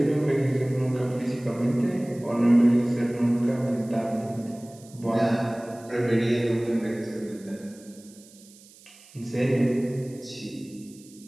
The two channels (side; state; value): right; noise; hiss, 24 dB below the sound